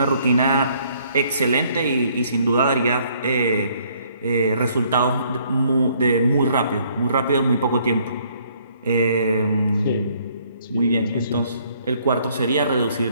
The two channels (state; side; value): inverted; both; correlation -0.64